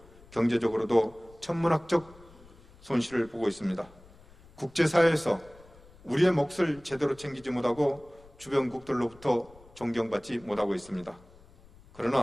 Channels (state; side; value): noise; left; rumble, 24 dB below the sound